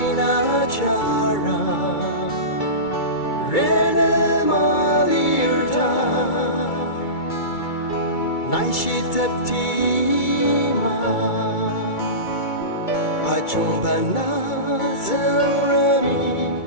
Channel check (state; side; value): late; right; 2.3 ms